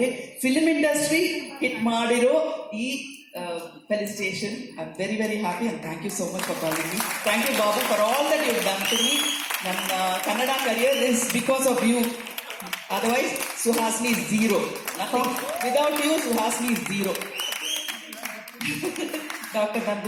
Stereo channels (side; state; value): both; identical; correlation 1.00